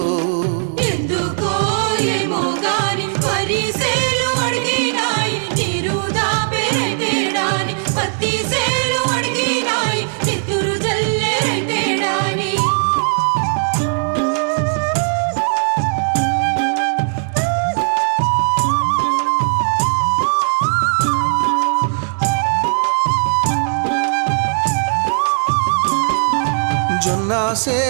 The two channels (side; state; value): left; silent; 68 dB below the other